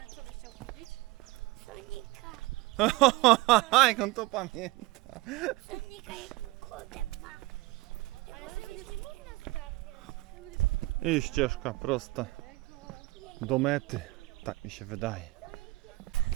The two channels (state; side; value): quieter; left; 20.8 dB